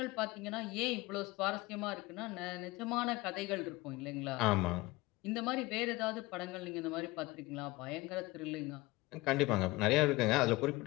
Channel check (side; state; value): right; quieter; 21.2 dB